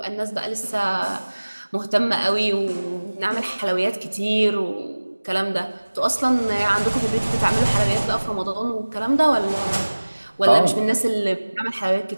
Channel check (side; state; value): both; inverted; correlation -1.00